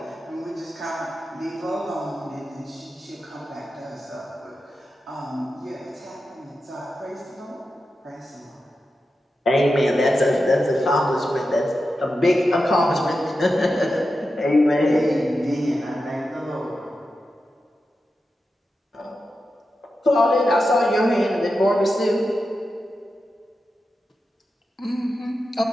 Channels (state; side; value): normal; both; correlation 0.90